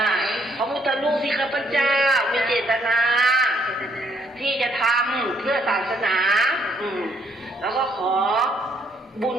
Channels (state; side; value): normal; both; correlation 0.69